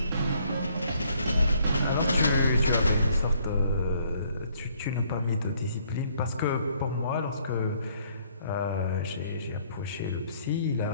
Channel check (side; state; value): both; inverted; correlation -0.65